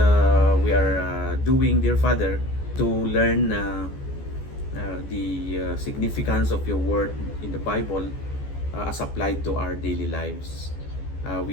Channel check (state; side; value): late; right; 14 ms